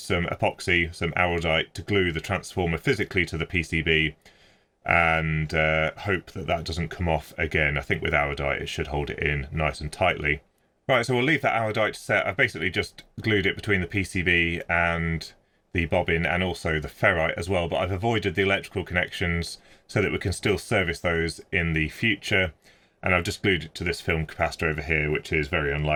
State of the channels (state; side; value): identical; both; correlation 1.00